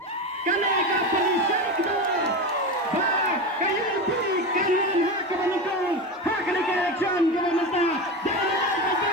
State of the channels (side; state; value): both; normal; correlation 0.21